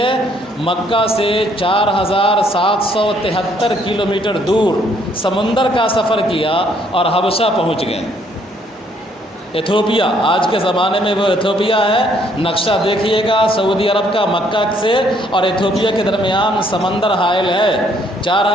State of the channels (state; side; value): normal; both; correlation 0.66